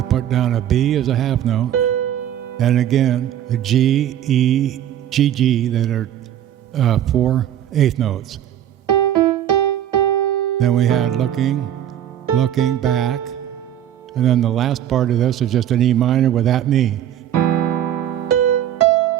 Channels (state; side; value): quieter; left; 11.1 dB